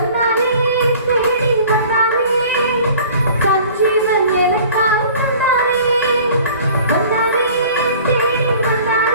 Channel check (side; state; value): both; inverted; correlation -0.47